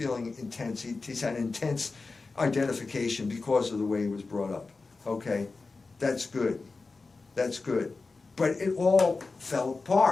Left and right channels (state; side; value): quieter; right; 3.9 dB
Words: intense. He's had intense identification because of the way he was brought up. Okay, that's good. That's good. But it all fell